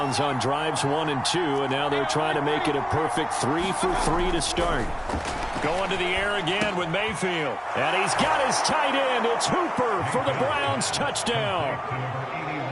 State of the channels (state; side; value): identical; both; correlation 1.00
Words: on drives 1 and 2, and now they're trying to make it a perfect 3 for 3 to start. Going to the air again with Mayfield. And he's got his tight end. It's Hooper for the Browns touchdown.